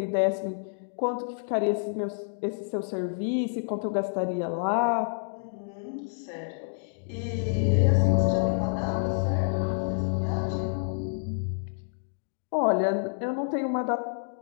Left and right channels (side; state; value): right; silent; digital silence